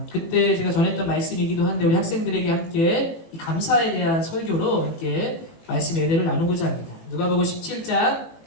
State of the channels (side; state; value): right; late; 18 ms